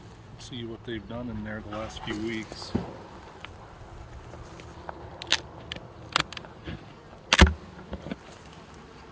See what they've done in there the last few weeks.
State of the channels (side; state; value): both; identical; correlation 1.00